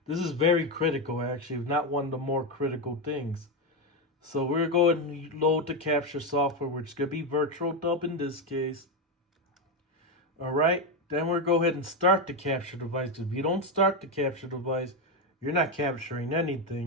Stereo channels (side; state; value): both; normal; correlation 0.09